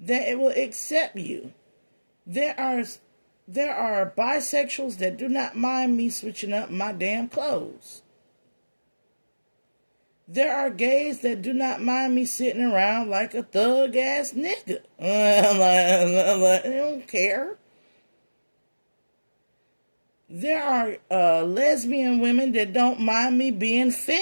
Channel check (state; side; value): inverted; both; correlation -1.00